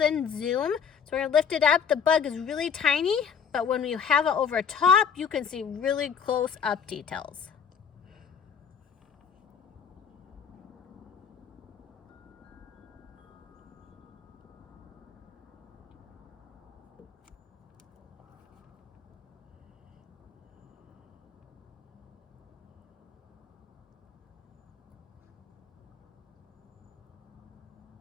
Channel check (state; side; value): quieter; right; 7.0 dB